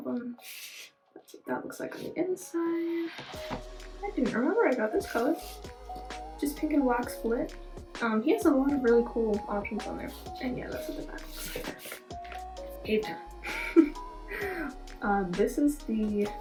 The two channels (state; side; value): identical; both; correlation 1.00